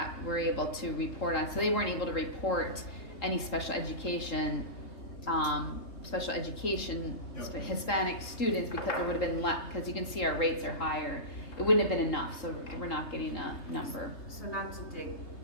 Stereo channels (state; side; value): late; right; 3.8 ms